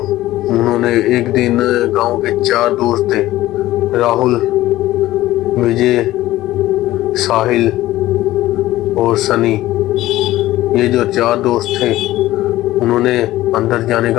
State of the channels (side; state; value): right; quieter; 15.8 dB